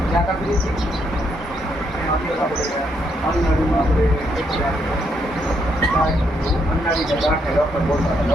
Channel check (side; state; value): both; normal; correlation 0.75